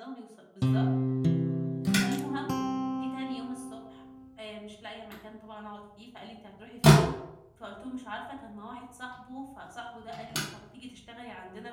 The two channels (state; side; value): identical; both; correlation 1.00